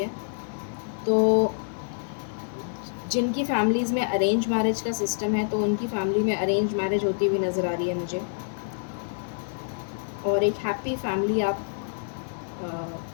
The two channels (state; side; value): silent; right; digital silence